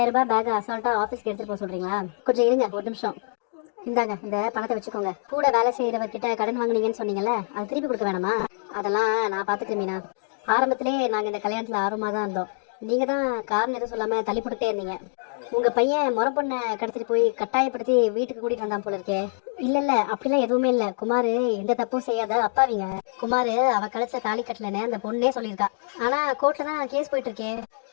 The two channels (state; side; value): silent; right; digital silence